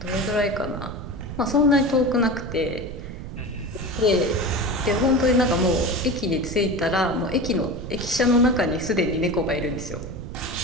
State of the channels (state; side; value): noise; right; rumble, 9 dB below the sound